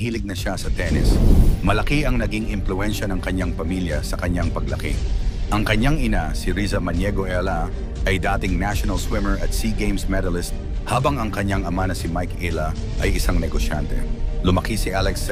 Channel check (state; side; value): identical; both; correlation 1.00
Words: na siya sa tennis. Malaki ang naging impluwensya ng kanyang pamilya sa kanyang paglaki. Ang kanyang ina, si Riza Maniego Ayala, ay dating national swimmer at SEA Games medalist, habang ang kanyang ama na si Mike Ayala ay isang negosyante. Lumaki si Alex sa